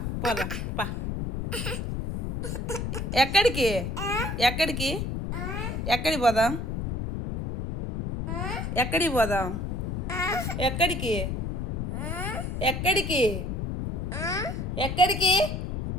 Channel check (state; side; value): noise; left; rumble, 3 dB below the sound